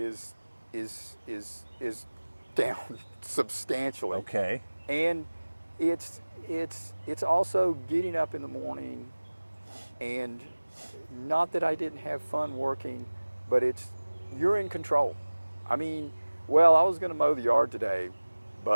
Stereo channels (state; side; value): inverted; both; correlation -1.00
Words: down substantially. Okay. And it's also getting up in the morning, and not that I didn't have fun working, but you're in control. I mean, I was going to mow the yard today,